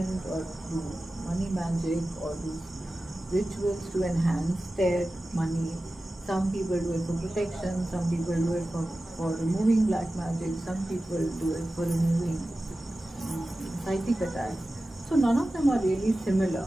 or do money magic or do rituals to enhance their money. Some people do it for protection, some people do it for removing black magic, some people do it for removing psychic attacks. So none of them are really similar.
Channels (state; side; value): normal; both; correlation 0.95